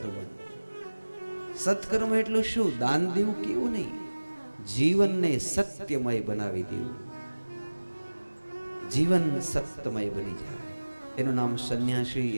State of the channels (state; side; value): inverted; both; correlation -1.00